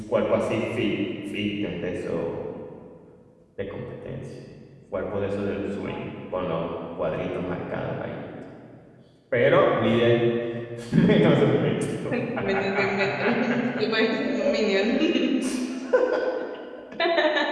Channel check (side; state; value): both; identical; correlation 1.00